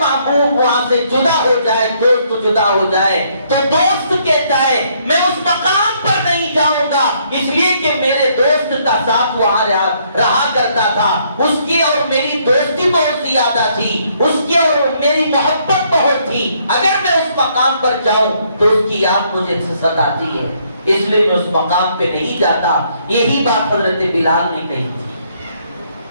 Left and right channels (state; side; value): inverted; both; correlation -0.69